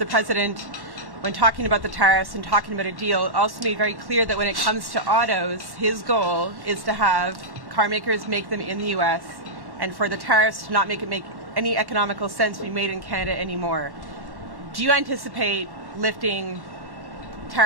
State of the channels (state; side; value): late; left; 1.1 ms